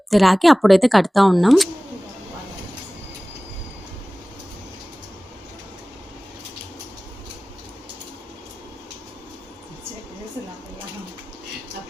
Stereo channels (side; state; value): both; normal; correlation 0.98